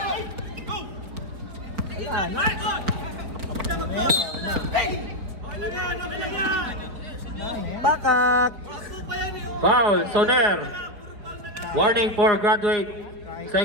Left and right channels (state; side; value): late; left; 4.1 ms